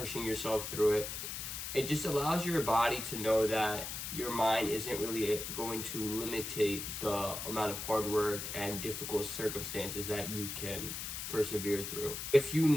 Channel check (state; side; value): noise; left; hiss, 6 dB below the sound